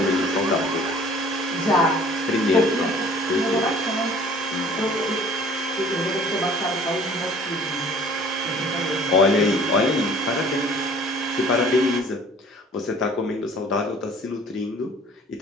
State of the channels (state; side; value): normal; both; correlation 0.51